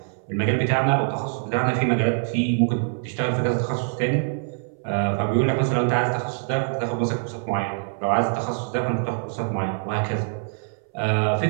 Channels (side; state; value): left; silent; 61 dB below the other